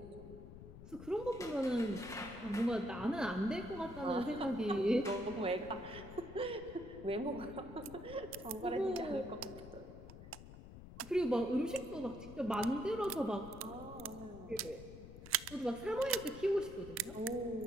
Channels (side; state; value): left; noise; rumble, 14 dB below the sound